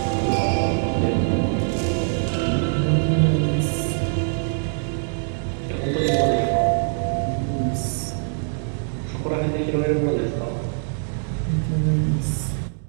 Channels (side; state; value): left; silent; digital silence